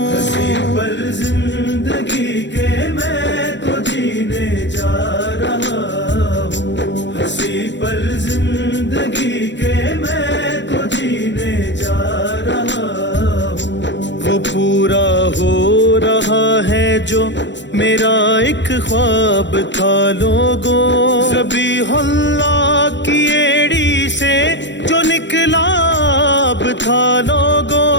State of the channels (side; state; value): right; late; 0.52 ms